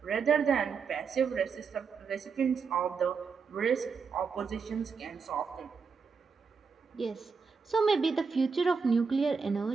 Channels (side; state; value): left; quieter; 5.4 dB